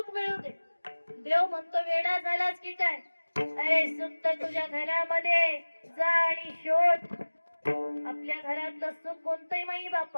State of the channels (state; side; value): inverted; both; correlation -1.00